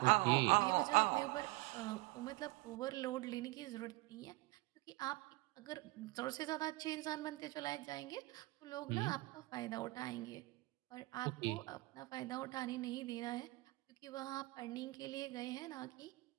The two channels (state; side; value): quieter; left; 21.8 dB